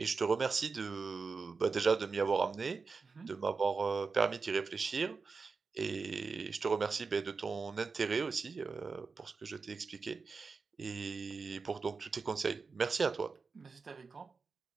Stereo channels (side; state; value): left; quieter; 4.7 dB